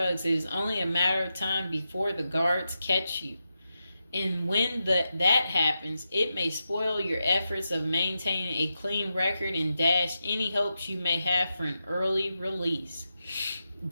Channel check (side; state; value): both; inverted; correlation -0.89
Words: it is only a matter of time before the guards catch you. And when that happens, it may spoil your efforts of maintaining a clean record and dash any hopes you may have for an early release.